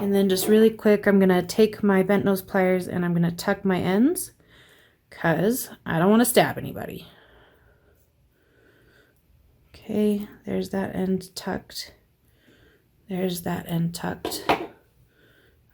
And then just really quick, I'm going to take my bent nose pliers and I'm going to tuck my ends because I don't want to stab anybody. Okay, there's that end tucked. There's that end tucked.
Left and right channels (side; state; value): both; identical; correlation 1.00